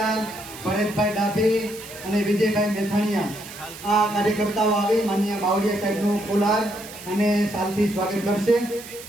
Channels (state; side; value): noise; right; hiss, 15 dB below the sound